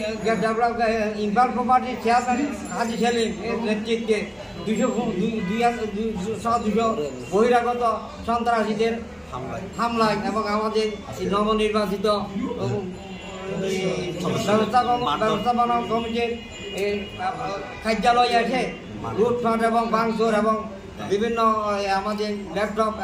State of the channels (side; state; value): both; identical; correlation 1.00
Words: ইম্পাল প্রপার্টির চেয়ারম্যান হাজি সেলিম এর নেতৃত্বে 200 বহিরাগত সন্ত্রাসীদের হামলায় এবং আমাদের নবনির্বাচিত ব্যবস্থাপনা কমিটির কার্যালয়ে এসে লুটপাট এবং ভাঙচুর এবং বিভিন্ন আমাদের ল্যাপটপ